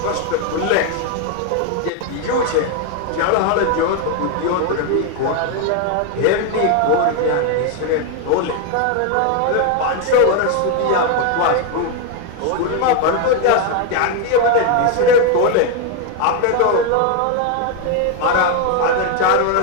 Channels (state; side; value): different; both; correlation 0.01